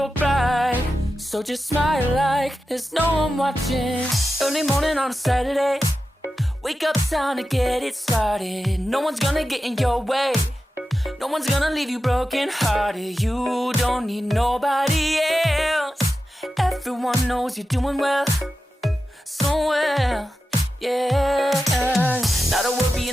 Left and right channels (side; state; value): both; normal; correlation 0.92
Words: bright, so just smile like there's no one watching. Early morning on a Saturday, wake up, time to get it started. No one's gonna get in your way, no one's gonna leave you broken hearted. You don't need nobody else, everyone knows you're doing well, so well, yeah. Not a worry